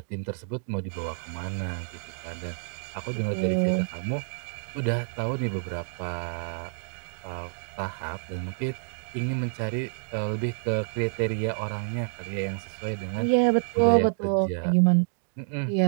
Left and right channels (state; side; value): silent; left; digital silence